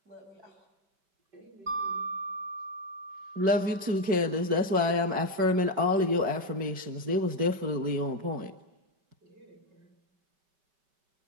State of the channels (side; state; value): left; late; 5.2 ms